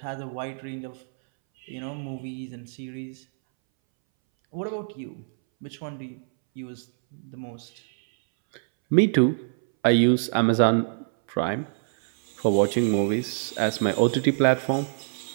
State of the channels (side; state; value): left; silent; 61 dB below the other